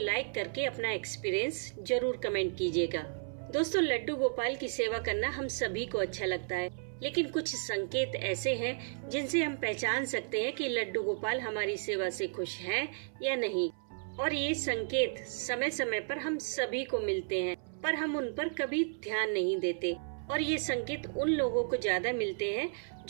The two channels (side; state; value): left; silent; 55 dB below the other